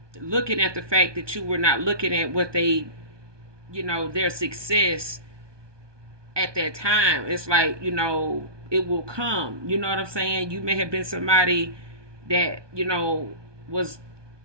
looking at the fact that you were not looking at what they, their success at that time. It's like, it will come. You know what I'm saying? You may have been somebody that, was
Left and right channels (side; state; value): left; late; 1.2 ms